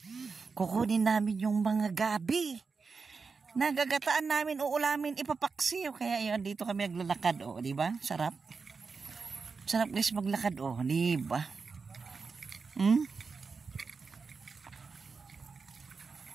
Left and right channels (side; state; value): left; quieter; 4.8 dB